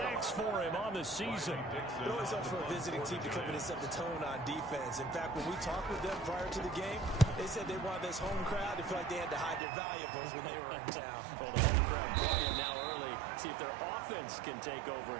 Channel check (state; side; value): drops out; left; at 9.6 s